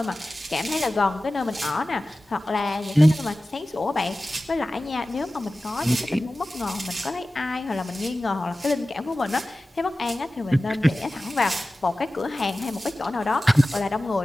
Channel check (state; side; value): normal; both; correlation 0.96